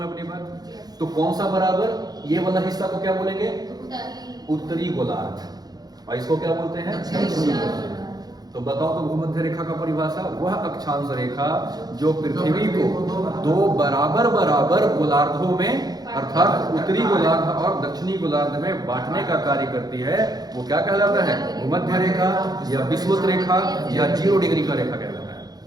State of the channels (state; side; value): late; left; 0.19 ms